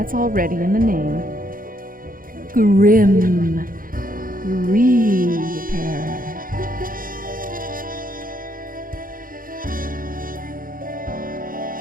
already in the name. Grim Reaper.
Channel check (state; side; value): late; left; 0.41 ms